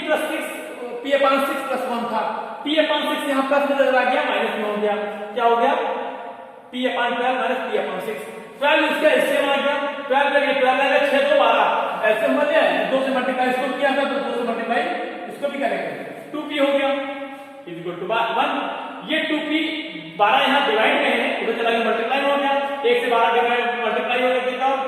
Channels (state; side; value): identical; both; correlation 1.00